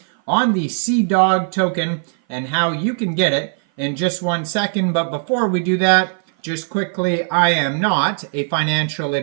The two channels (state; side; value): silent; left; 57 dB below the other